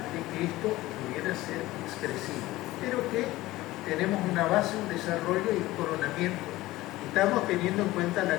de que esto pudiera ser expresivo, pero que tenemos una base, un desarrollo y un coronamiento. Estamos teniendo en cuenta la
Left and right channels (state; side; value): quieter; right; 17.8 dB